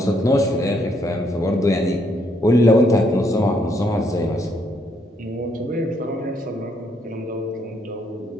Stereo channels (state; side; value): normal; both; correlation 0.72